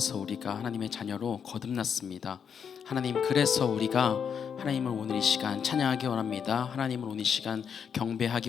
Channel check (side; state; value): right; quieter; 7.3 dB